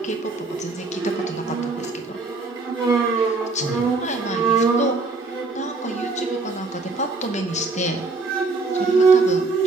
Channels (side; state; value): left; quieter; 3.7 dB